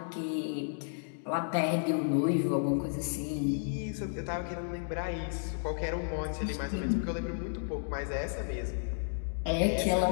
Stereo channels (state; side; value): silent; right; digital silence